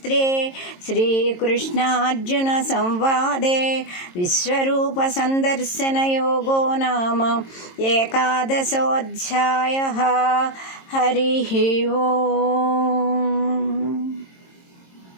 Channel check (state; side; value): late; right; 22 ms